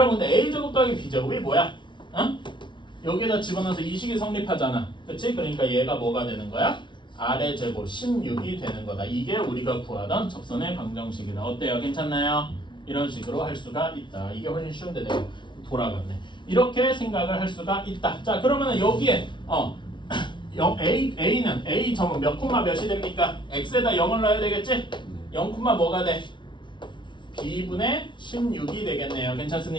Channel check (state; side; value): late; right; 0.23 ms